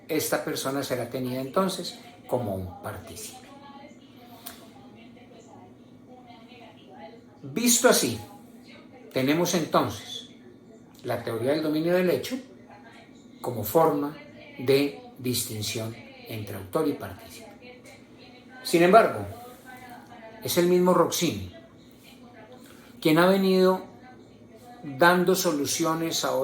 esta persona será tenida entonces como un partícipe. Visto así, tenemos entonces la teoría del dominio del hecho como forma de distinción entre autor y partícipe. Sin embargo, es el mismo Roxin quien ha venido dando soluciones a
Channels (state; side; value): identical; both; correlation 1.00